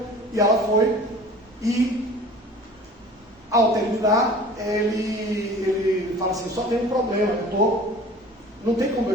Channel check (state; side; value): normal; both; correlation 0.44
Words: E ela foi, e ao terminar, ele fala assim: só tem um problema, não tem como eu